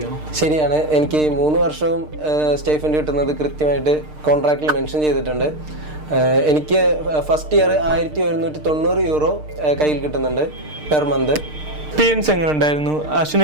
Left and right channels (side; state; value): left; late; 6.6 ms